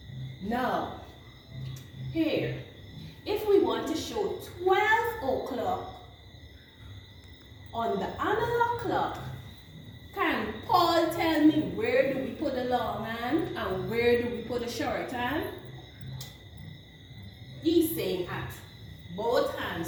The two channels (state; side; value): identical; both; correlation 1.00